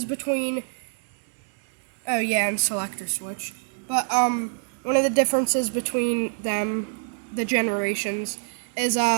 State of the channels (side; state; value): left; silent; 61 dB below the other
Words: between, oh yeah, and selector switch, but one of the differences between them, the generations, is